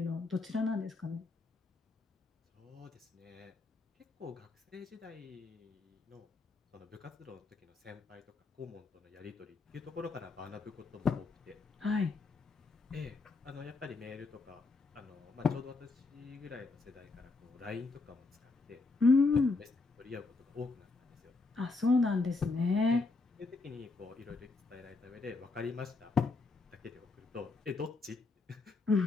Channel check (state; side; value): quieter; right; 3.7 dB